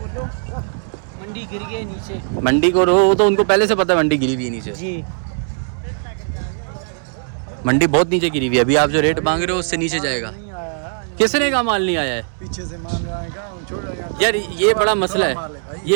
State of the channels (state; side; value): silent; left; 66 dB below the other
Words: मंडी गिर गई नीचे। मंडी को रो तो उनको पहले से पता है मंडी गिरी हुई है नीचे। जी मंडी बहुत नीचे गिरी हुई है। अभी आप जो रेट मांग रहे हो उससे नीचे जाएगा। किसने का माल नहीं आया है? पीछे से मान आएगा छोड़ यार ये बड़ा मसला है।